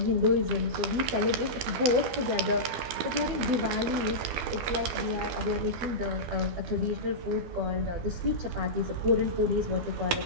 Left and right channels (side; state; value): left; late; 12 ms